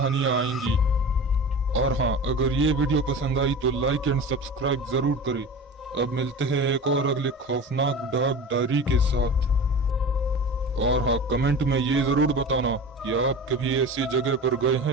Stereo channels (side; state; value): both; normal; correlation 0.33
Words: आएंगी। और हाँ, अगर ये वीडियो पसंद आई तो लाइक एंड सब्सक्राइब जरूर करें। अब मिलते हैं एक और अगले खौफनाक डार्क डायरी के साथ। और हाँ, कमेंट में ये जरूर बताना कि आप कभी ऐसी जगह पर गए हैं